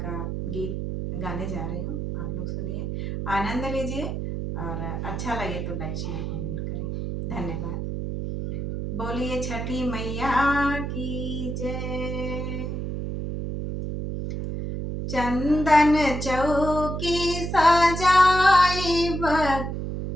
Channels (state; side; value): noise; right; hum, 4 dB below the sound